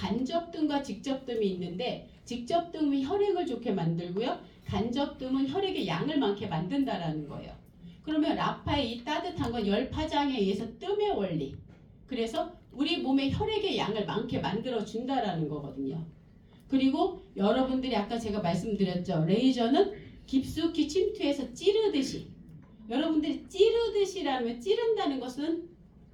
직접뜸이 있는데 직접뜸이 혈액을 좋게 만들고요. 간접뜸은 혈액의 양을 많게 만든다라는 거예요. 그러면 라파의 이 따뜻한 건 열 파장에 의해서 뜸의 원리. 그래서 우리 몸의 혈액의 양을 많게 만들어 준다라는 거거든요. 그리고 여러분들이 아까 제가 말씀드렸죠. 레이저는 깊숙이 침투해서 찌르듯이. 여러분들이 찌르듯이라면 찌른다는 것은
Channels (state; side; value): identical; both; correlation 1.00